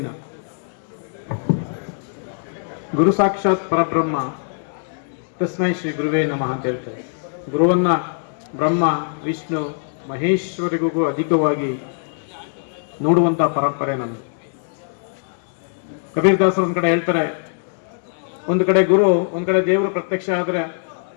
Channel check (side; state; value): right; silent; digital silence